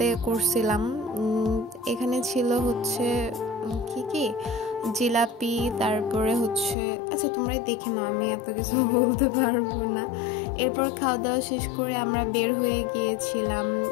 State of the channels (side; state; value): right; drops out; at 6.8 s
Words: করছিলাম। এখানে ছিল হচ্ছে কি জিলাপি, তারপরে হচ্ছে আচ্ছা তোমরাই দেখে নাও, আমি এত কিছু বলতে পারবো না। এরপর খাওয়া দাওয়া শেষ করে আমরা বের হয়ে গিয়েছিলাম।